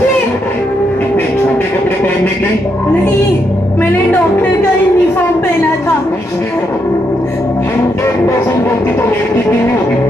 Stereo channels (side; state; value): both; normal; correlation 0.79